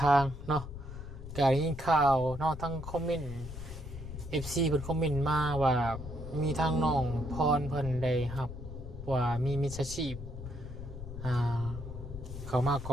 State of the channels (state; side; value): noise; left; rumble, 11 dB below the sound